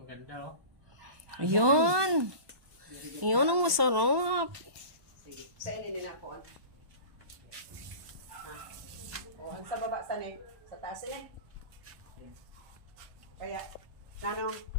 oh. Ayun. Ayun ang masarap. Sige, sa ininin ako. O, ang sa baba, sa taas Kaya, nanong,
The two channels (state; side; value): late; left; 1.1 ms